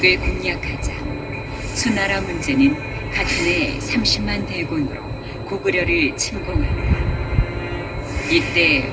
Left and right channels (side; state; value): both; identical; correlation 1.00